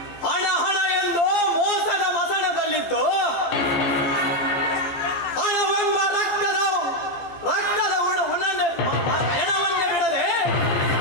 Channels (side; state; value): right; late; 14 ms